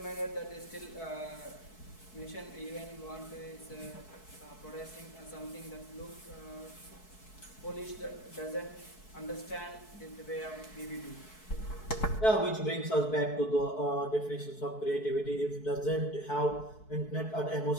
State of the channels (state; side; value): late; right; 4.6 ms